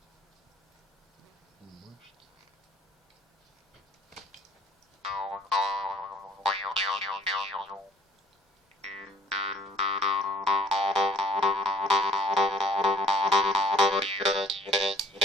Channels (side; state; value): both; normal; correlation 0.59